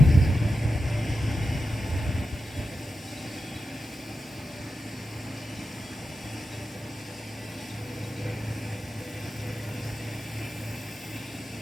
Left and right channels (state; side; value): normal; both; correlation 0.90